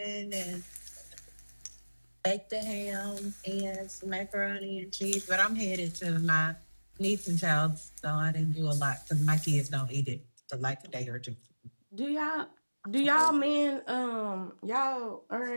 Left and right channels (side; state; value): both; inverted; correlation -1.00